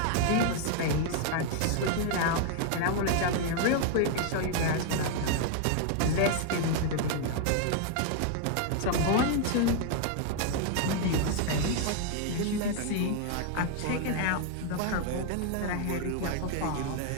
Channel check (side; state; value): both; different; correlation 0.00